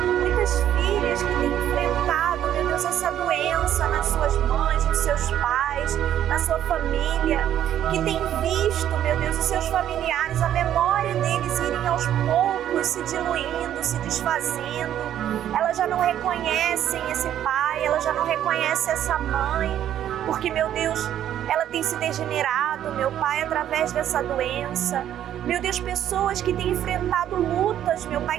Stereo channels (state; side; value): quieter; left; 10.9 dB